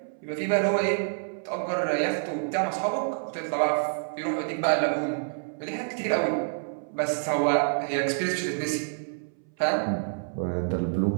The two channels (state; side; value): silent; left; 59 dB below the other